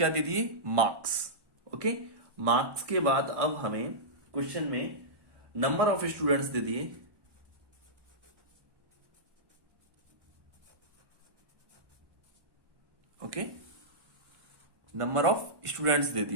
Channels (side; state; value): left; late; 1.1 ms